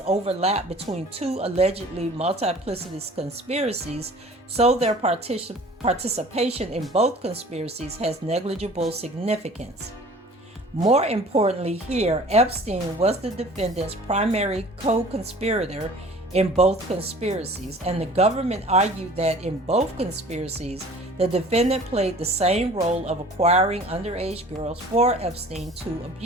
overlap between two allegedly multiplicitous conspiracies, so their participation in both conspiracies has negligible significance. More importantly here, Epstein was the defendant's primary co-conspirator in both conspiracies, and the government argued that in both conspiracies, the defendant played the same role of acquiring underage girls for Epstein to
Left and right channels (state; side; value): normal; both; correlation 0.47